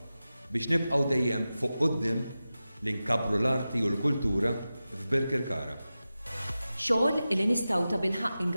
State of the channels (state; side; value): inverted; both; correlation -0.94